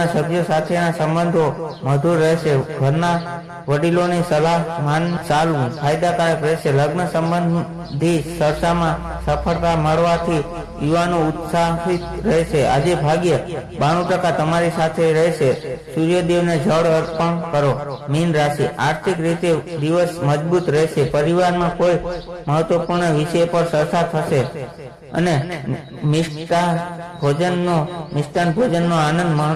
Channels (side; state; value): both; identical; correlation 1.00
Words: સભ્યો સાથેના સંબંધો મધુર રહેશે. ઘરના વડીલોની સલાહ ચાલવું ફાયદાકારક રહેશે. લગ્ન સંબંધી ચર્ચામાં સફળતા મળવાથી યુવાનો ઉત્સાહિત રહેશે. આજે ભાગ્ય 92% તમારી સાથે રહેશે. સૂર્યદેવને જળ અર્પણ કરો. મીન રાશિ, આર્થિક રીતે દિવસ મજબૂત રહેશે. પરિવારમાં કોઈ મહત્વપૂર્ણ વિષય પર ચર્ચા થશે અને મિષ્ટાન ભોજનનો આનંદ